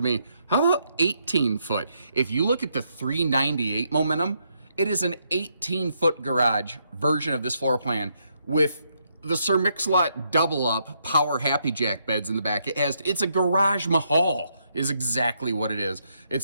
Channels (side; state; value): both; inverted; correlation -0.76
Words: me. How about 18 foot? If you look at the 398 Momentum, it is an 18-foot garage version of this floor plan with the Sir Mix-a-Lot double up power Happy Jack beds in the back. It's a garage mahal is exactly what it is.